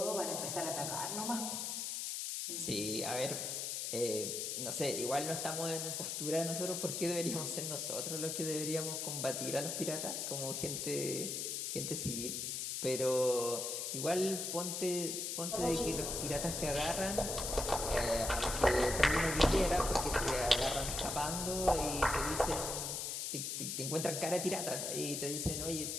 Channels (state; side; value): noise; left; hiss, 2 dB below the sound